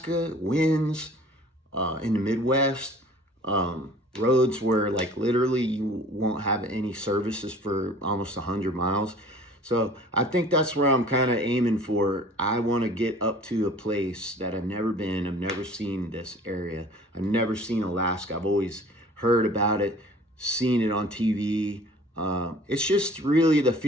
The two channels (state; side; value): normal; both; correlation 0.48